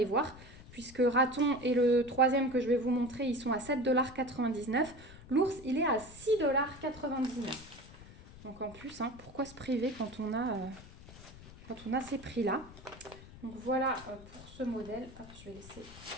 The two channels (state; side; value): noise; left; rumble, 18 dB below the sound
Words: voir, puisque raton et le troisième que je vais vous montrer, ils sont à 7,99 $. L'ours, il est à 6,99 $. Donc en plus, hein, pourquoi se priver quand on a ces prix-là? Donc voilà pour ce modèle. Hop, je vais laisser